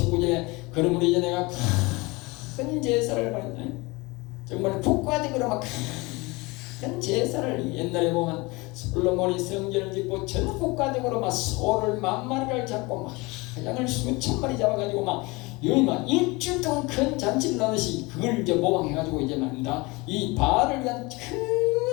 그러므로 이제 내가 큰 제사를 받는다. 정말 국가적으로 막 큰 제사를, 옛날에 보면 솔로몬이 성전을 짓고 전 국가적으로 막 소를 10,000마리를 잡고 막 양을 수천 마리 잡아가지고 막 여기 막 일주일 동안 큰 잔치를 하듯이 그걸 이제 모방해가지고 이제 말입니다, 이 바알을 위한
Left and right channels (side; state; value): right; quieter; 24.5 dB